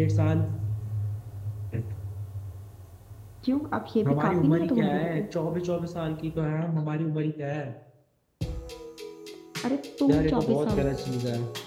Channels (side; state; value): both; identical; correlation 1.00